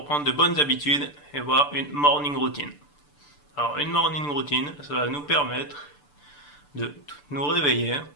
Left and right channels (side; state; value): right; late; 6.8 ms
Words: de bonnes habitudes et voir une morning routine. Alors une morning routine, ça va nous permettre de nous réveiller